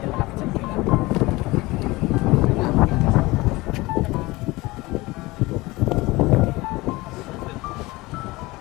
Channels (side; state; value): right; quieter; 21.3 dB